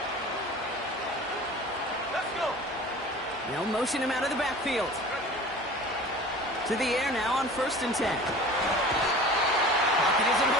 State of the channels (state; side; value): normal; both; correlation 0.41